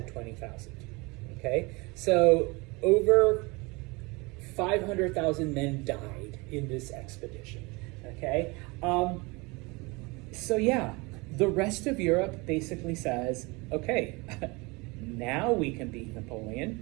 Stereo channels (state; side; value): quieter; left; 26.2 dB